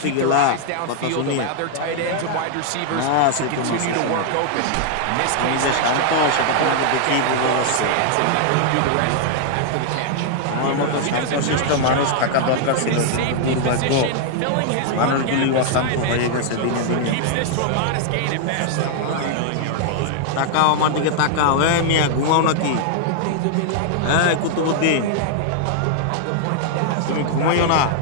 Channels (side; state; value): both; different; correlation -0.01